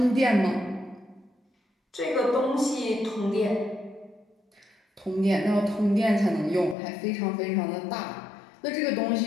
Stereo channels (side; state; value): right; drops out; at 6.8 s